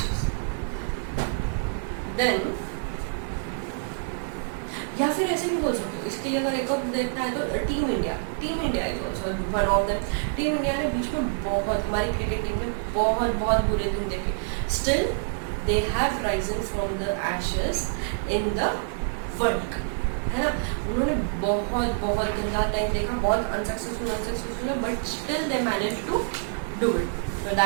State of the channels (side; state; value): left; silent; digital silence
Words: Then या फिर ऐसे भी बोल सकते हो, इसके लिए अगर एक और देखना है तो team India is also one of them. Team India ने बीच में बहुत, हमारी क्रिकेट टीम ने बहुत बुरे दिन देखे. Still they have Ryzen from the ashes in the world cup, है ना. उन्होंने बहुत गंदा टाइम देखा, बहुत अनसक्सेसफुल है, but still they manage to do it. So